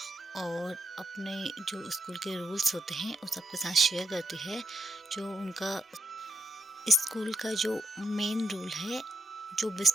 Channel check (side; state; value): both; normal; correlation 0.79